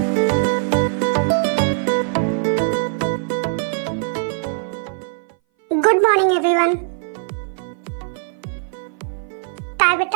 Good morning everyone. काय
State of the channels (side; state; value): left; silent; 59 dB below the other